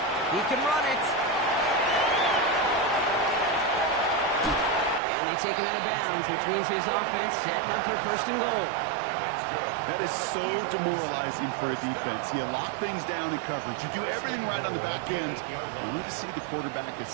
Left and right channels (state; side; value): drops out; left; at 5.0 s